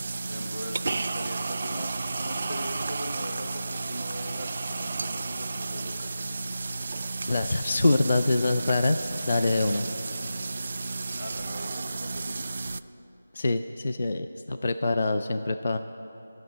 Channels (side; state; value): both; inverted; correlation -0.91